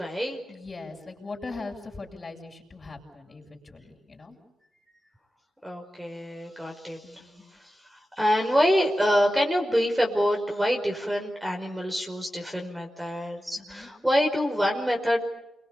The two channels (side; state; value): both; normal; correlation 0.93